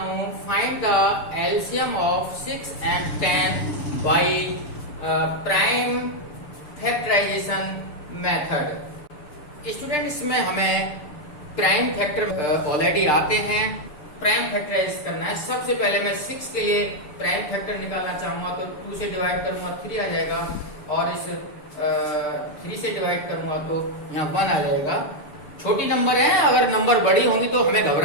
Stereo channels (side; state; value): right; late; 6.9 ms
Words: हूँ. Find the LCM of 6 and 10 by prime factorization method. Student, इसमें हमें प्राइम फैक्टर ऑलरेडी आते हैं. प्राइम फैक्टराइज करना है. सबसे पहले मैं 6 के लिए प्राइम फैक्टर निकालना चाहूंगा तो 2 से डिवाइड करूंगा 3 आ जाएगा, और इस 3 से डिवाइड करूंगा तो यहाँ 1 आ जाएगा. छोटी नंबर है, अगर नंबर बड़ी होंगी तो हमें